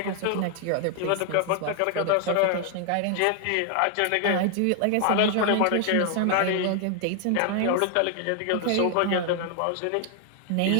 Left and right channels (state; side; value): different; both; correlation 0.00